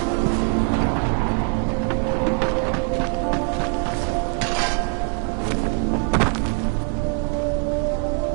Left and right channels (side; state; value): left; quieter; 37.4 dB